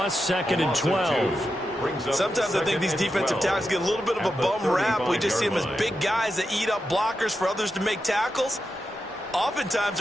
second and 12. Sometimes I think these defensive tackles get a little bit of a bum rap. We just see them as big guys that eat up blockers for others to make tackles. Oftentimes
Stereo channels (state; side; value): normal; both; correlation 0.88